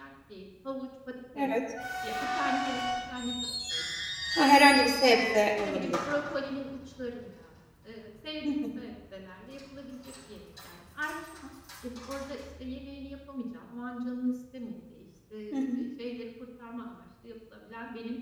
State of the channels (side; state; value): both; identical; correlation 1.00